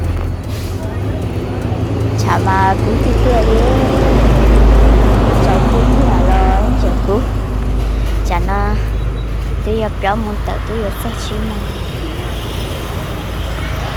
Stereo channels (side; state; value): both; identical; correlation 1.00